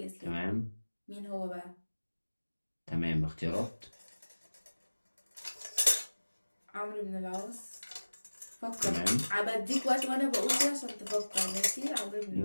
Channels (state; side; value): inverted; both; correlation -1.00